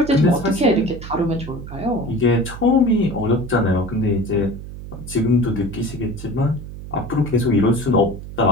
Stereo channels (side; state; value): right; noise; hum, 12 dB below the sound